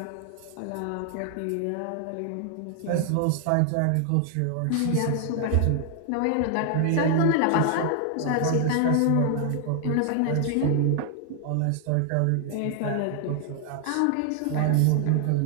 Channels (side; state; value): both; different; correlation 0.00